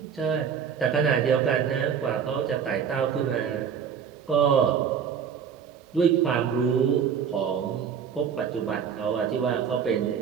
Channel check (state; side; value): quieter; left; 7.5 dB